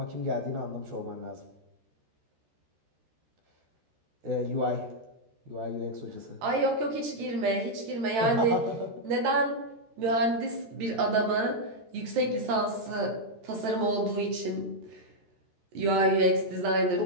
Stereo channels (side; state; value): left; late; 13 ms